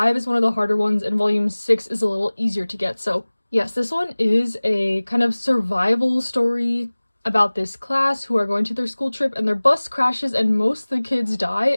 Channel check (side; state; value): both; inverted; correlation -1.00